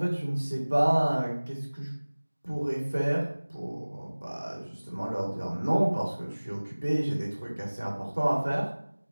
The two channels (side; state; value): both; inverted; correlation -1.00